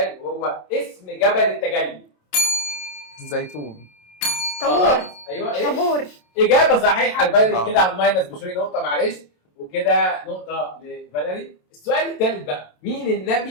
وهو اسم جبل التجلي. الزيتون. طابور. ايوه ايه؟ طابور. اجابه صحيحه لفاليري كده على الماينس بشوي نقطه معلش وكده نقطه لفاليري. السؤال الثالث بقى مين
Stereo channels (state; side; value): late; right; 27 ms